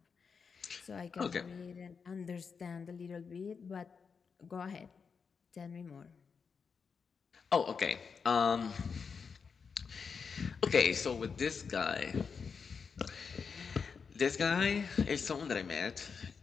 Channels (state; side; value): quieter; right; 5.8 dB